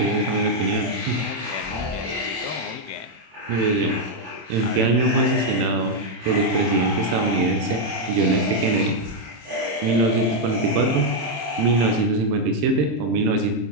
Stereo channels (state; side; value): late; left; 27 ms